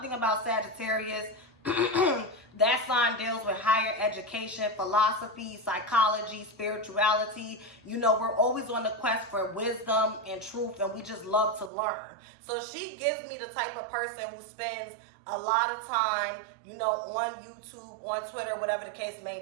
thing about Sagittarius, that sign deals with higher education, philosophy, psychology, spirituality. You know, we're always on the quest for wisdom and truth, and we just love to learn. So she gives me the type of person who spends a lot of time, you know, on YouTube, on Twitter, whatever the case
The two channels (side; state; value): left; drops out; at 11.7 s